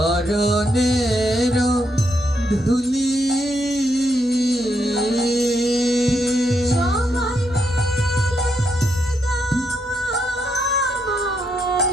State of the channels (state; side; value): normal; both; correlation 0.79